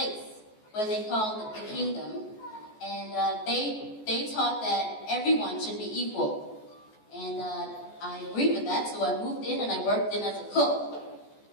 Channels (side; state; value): right; late; 14 ms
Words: where they called it the Kingdom, and they taught that everyone should be equal. And I agreed with that, so I moved in and I worked in as a cook.